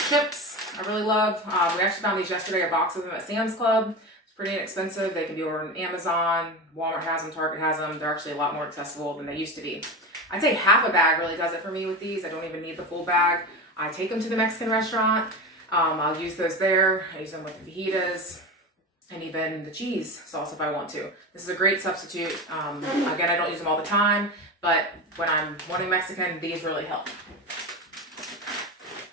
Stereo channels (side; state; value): both; normal; correlation 0.24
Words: chips, I really love. We actually found these yesterday, a box of them at Sam's Club. It's pretty inexpensive. They can be ordered on Amazon. Walmart has them, Target has them. They're actually a lot more accessible than they used to be. I'd say half a bag really does it for me with these. I don't even need the full bag. I take them to the Mexican restaurant. I'll use those there. I use them with the fajitas and even the cheese sauce if I want to. This is a great substitute. Again, I don't use them all the time, but when I'm wanting Mexican, these really help.